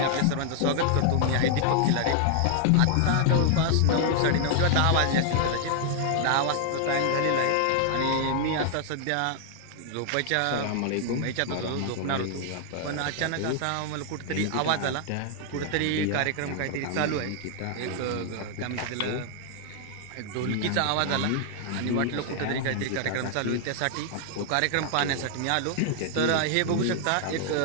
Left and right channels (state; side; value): different; both; correlation 0.00